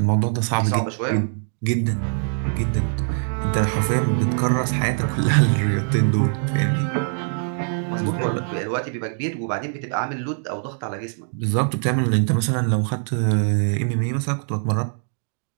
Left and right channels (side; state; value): left; silent; 64 dB below the other